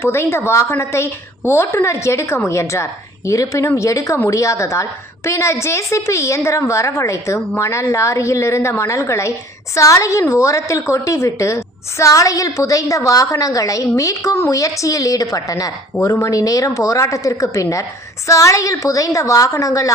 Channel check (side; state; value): both; normal; correlation 0.50